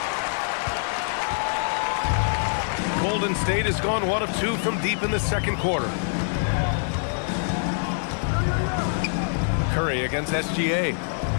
Golden State has gone 1 of 2 from deep in the second quarter. Curry against SGA.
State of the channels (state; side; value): silent; right; digital silence